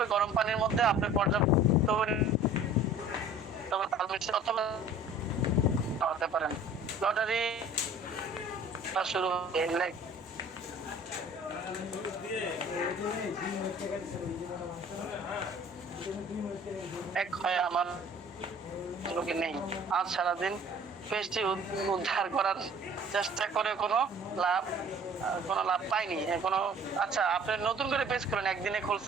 গরম পানির মধ্যে আপনি পর্যাপ্ত অথবা খাওয়াতে পারেন। লটারি শুরু হবে এক হয় আমার লোকে নেই। আজ সারাদিন পেজটি উদ্ধার করার চেষ্টা করে কোনো লাভ পাইনি কোনো। আচ্ছা, আপনি নতুন করে পেজ করেন, একদিনে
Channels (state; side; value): normal; both; correlation 0.49